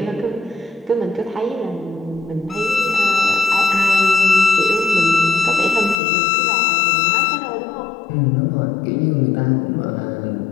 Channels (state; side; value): drops out; right; at 6.0 s